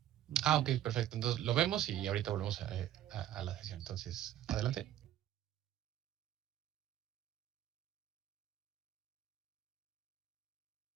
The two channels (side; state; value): left; quieter; 11.9 dB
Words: Ah, ok, perfecto. Entonces lo vemos y ahorita volvemos a la sesión. Entonces, adelante.